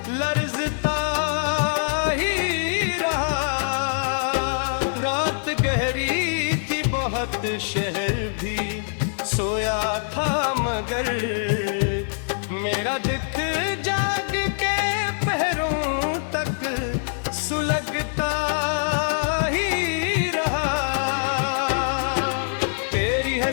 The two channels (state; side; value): silent; right; digital silence